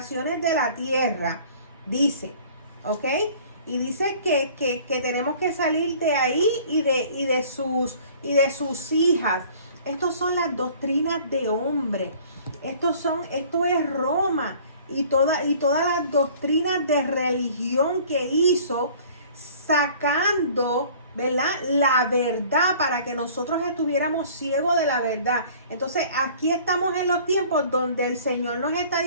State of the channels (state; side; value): inverted; both; correlation -0.51